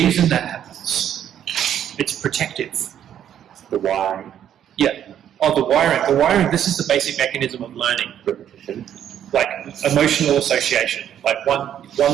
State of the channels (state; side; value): quieter; left; 10.1 dB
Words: that happens, it's protective. The wiring? Yeah. Oh, the wiring. The wiring, this is the basic mechanism of learning. Repetition? Like emotional association. Like one